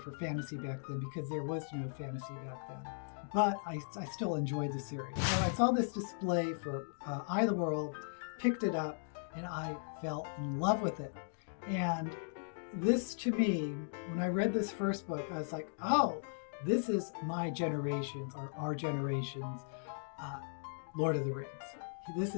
fantasy back then because there was no fantasy back then. But I still enjoyed the series. So I saw this display for Eye of the World, picked it up, and I fell in love with it. And this, to me, when I read this first book, I was like, oh, this is my generation's, or our generation's, Lord of the Rings. This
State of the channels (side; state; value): right; silent; digital silence